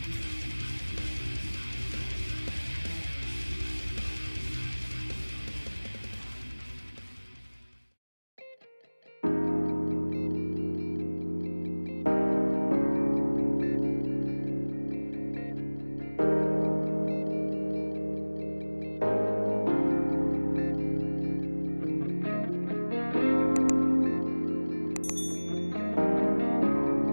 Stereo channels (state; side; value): inverted; both; correlation -1.00